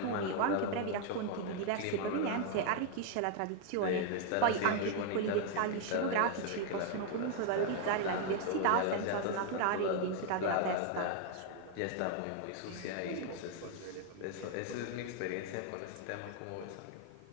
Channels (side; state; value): both; different; correlation 0.00